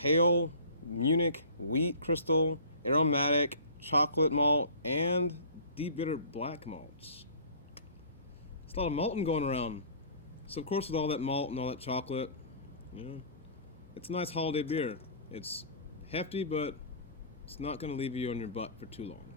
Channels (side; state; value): both; inverted; correlation -0.44